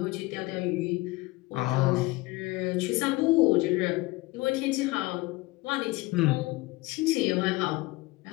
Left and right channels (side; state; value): right; quieter; 21.5 dB